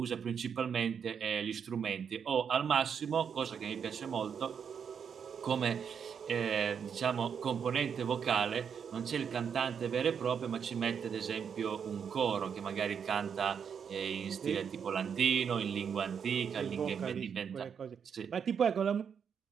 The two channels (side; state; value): left; quieter; 7.2 dB